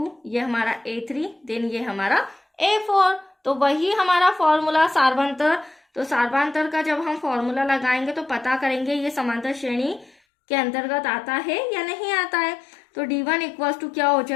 ये हमारा A3, देन ये हमारा A4। तो वही हमारा फॉर्मूला सार्वंतर। तो सार्वंतर का जब हम फॉर्मूला लगाएंगे तो पता करेंगे ये समांतर श्रेणी के अंतर्गत आता है या नहीं आता है। तो D1 इक्वल्स टू क्या हो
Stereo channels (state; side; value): drops out; right; at 10.2 s